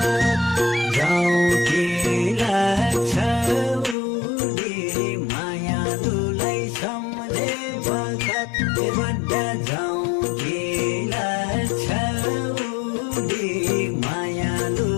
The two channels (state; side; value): drops out; right; at 4.0 s